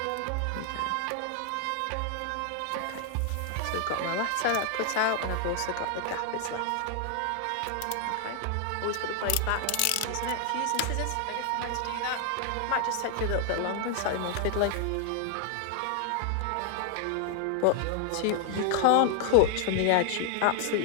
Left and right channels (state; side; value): different; both; correlation 0.00